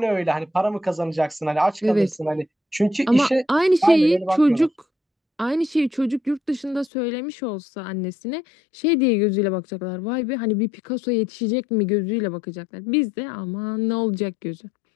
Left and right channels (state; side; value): drops out; right; at 6.9 s